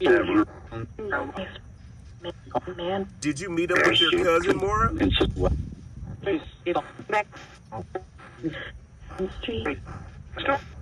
Did you meet him with your cousin, Mora?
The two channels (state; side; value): identical; both; correlation 1.00